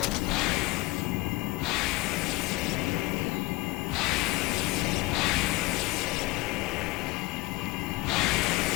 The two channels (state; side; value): quieter; right; 21.8 dB